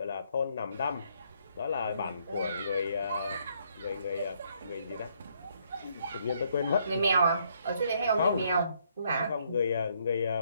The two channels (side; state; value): both; inverted; correlation -0.70